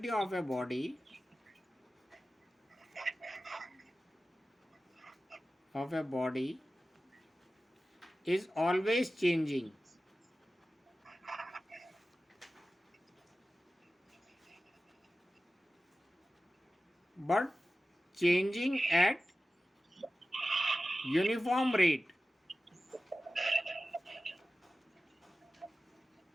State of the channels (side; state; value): both; normal; correlation 0.95